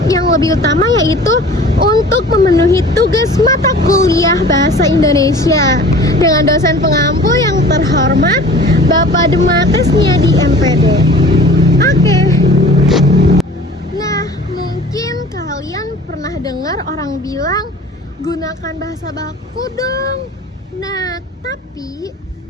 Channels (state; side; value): normal; both; correlation 0.44